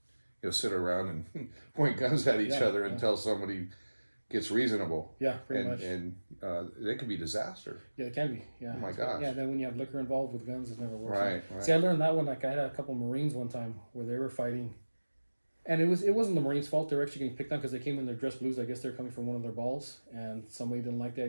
sit around and point guns at each other until somebody gets reasonable. Yeah, pretty much. And it can be disaster. Yeah, it can be. Yeah. Oh my gosh. Yeah, then when you have liquor involved with guns, it never works. Right. See, I learned that one. Like I had a couple of Marines one time where they were fighting, and it wasn't the Marines' fault. They were actually getting picked on because they came in their dress blues. I guess they're coming from one of their balls, and somebody didn't like the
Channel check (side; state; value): both; inverted; correlation -1.00